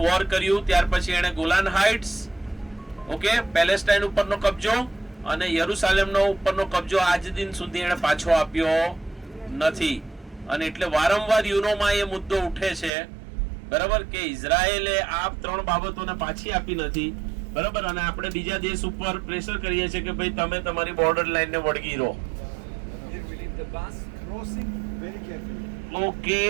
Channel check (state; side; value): drops out; left; at 12.9 s